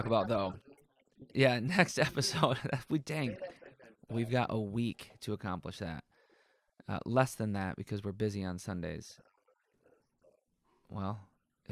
about, though, yeah, next episode. We've got a week to accomplish that. Less than that because we're busy on Sundays. Well,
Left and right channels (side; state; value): both; identical; correlation 1.00